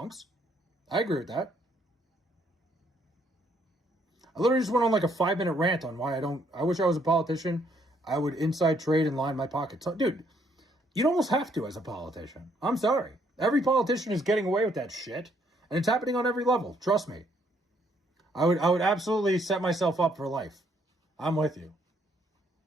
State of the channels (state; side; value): normal; both; correlation 0.68